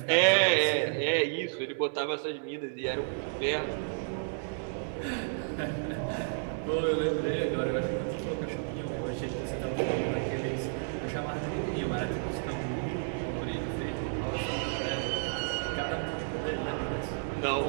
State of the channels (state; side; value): silent; left; digital silence